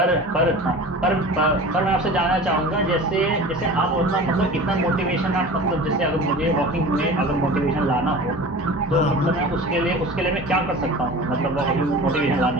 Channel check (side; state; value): both; normal; correlation 0.37